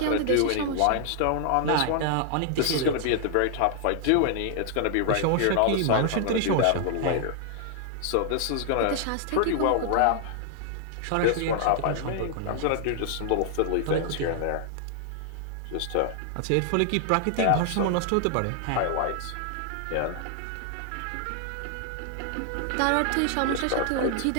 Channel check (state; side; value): different; both; correlation 0.00